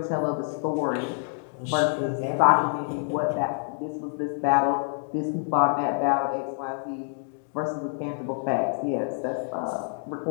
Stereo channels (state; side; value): silent; right; digital silence